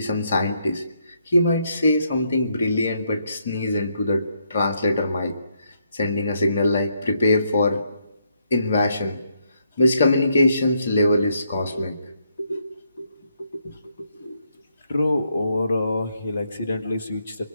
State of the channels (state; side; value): inverted; both; correlation -0.76